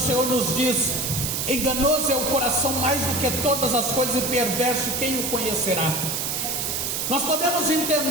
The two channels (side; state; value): right; noise; hiss, 1 dB below the sound